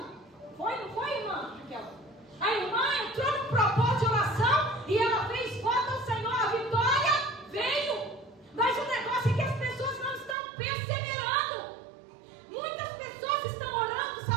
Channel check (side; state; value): left; drops out; at 10.4 s